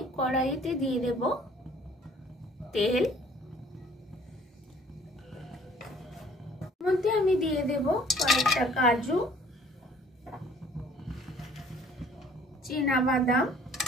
কড়াইতে দিয়ে দেব তেল, মধ্যে আমি দিয়ে দেব কয়েকটা কাজু, চীনা বাদাম,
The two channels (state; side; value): normal; both; correlation 0.56